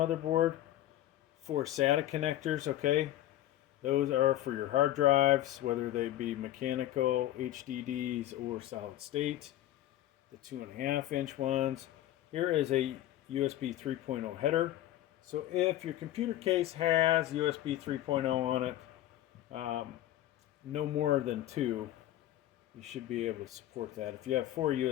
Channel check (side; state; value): right; quieter; 13.6 dB